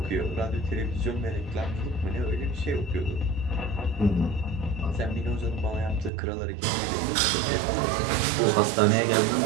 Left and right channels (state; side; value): drops out; left; at 6.1 s